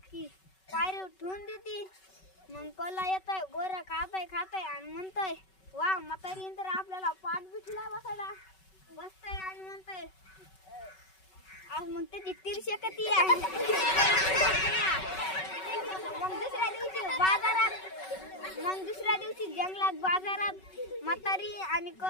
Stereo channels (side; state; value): right; late; 5.3 ms